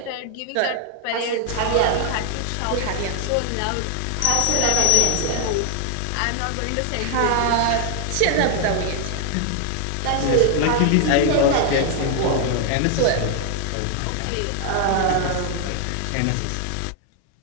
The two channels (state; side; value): different; both; correlation 0.00